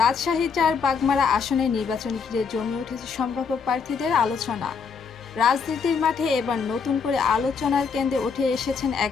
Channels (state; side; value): quieter; right; 5.7 dB